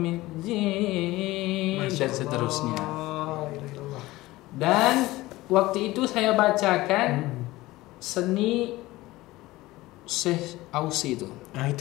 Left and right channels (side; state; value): right; quieter; 18.6 dB